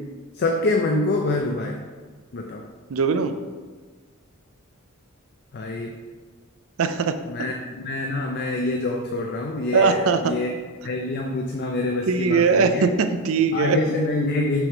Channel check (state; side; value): normal; both; correlation 0.09